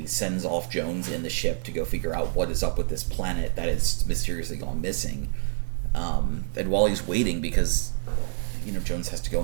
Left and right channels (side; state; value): left; silent; digital silence